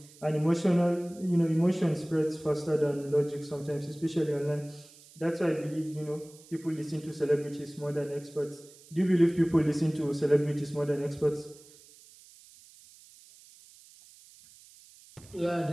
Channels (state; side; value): noise; right; hiss, 23 dB below the sound